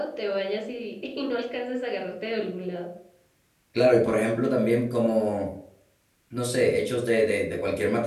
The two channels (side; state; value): both; identical; correlation 1.00